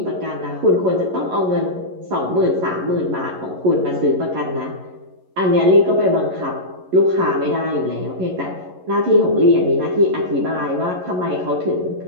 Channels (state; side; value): late; left; 11 ms